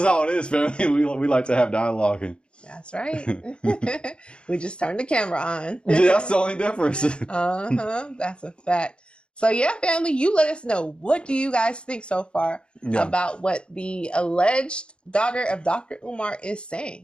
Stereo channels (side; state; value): right; late; 0.054 ms